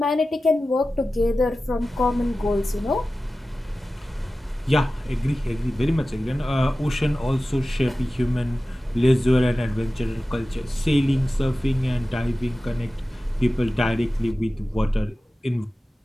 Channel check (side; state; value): both; normal; correlation 0.95